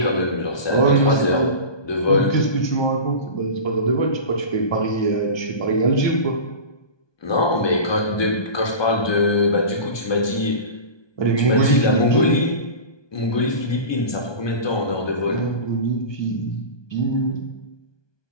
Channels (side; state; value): right; late; 1.2 ms